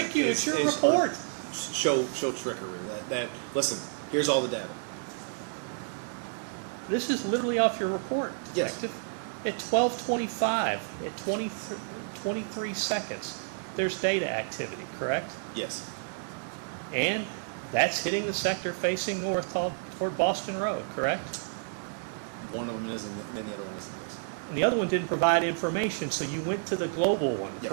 you. It's your report. Show trickery. That listen. Here's all the data. This is literally off your report. Yes. At 12:25, at 23 seconds, there's data activity, correct? Yes. And that's hitting the sector facing north toward Boston Road, correct? One of them is, and then the other one isn't. And the other one didn't provide information, so you went to the global one, Yes.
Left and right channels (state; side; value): silent; left; digital silence